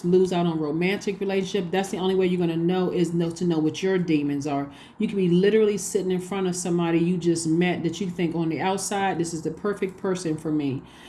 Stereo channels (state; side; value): identical; both; correlation 1.00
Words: lose out on romantic relationship. That's the only way you're going to know to know what your demons are. You can be literally sitting in front of somebody you just met that you think on the outside, this is the perfect person for me.